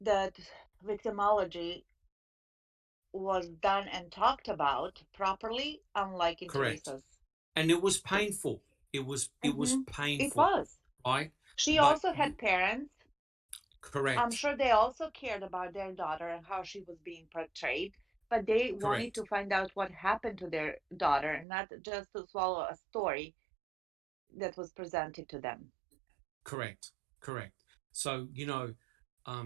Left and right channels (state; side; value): drops out; left; at 21.5 s